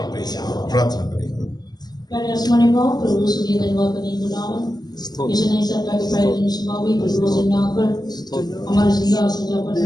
praise the Lord। प्रार्थना करेंगे। प्यारे आसमानी बाप, प्रभु सुनिए धन्यवाद करने के नाम इस नई सप्ताह के पहले दिन सुबह भी प्रभु से आकर हमारे जिंदा सजा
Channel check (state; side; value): late; right; 0.19 ms